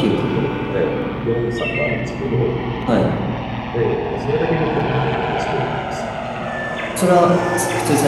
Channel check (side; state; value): both; identical; correlation 1.00